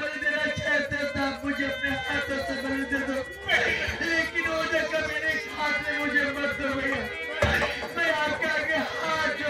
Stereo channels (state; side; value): identical; both; correlation 1.00